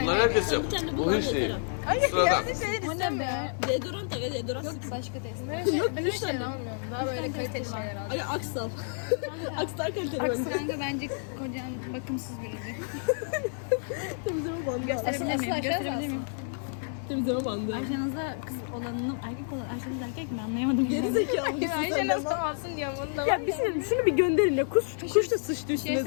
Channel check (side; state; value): right; silent; digital silence